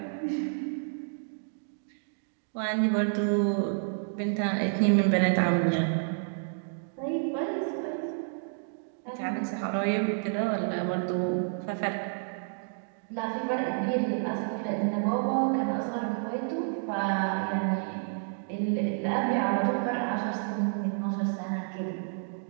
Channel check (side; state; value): left; silent; digital silence